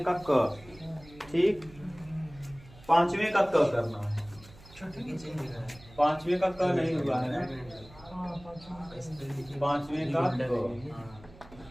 का क, ठीक। पांचवें का क करना है, पांचवें का क नहीं हुआ है ना, पांचवें का क,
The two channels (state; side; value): noise; right; hum, 22 dB below the sound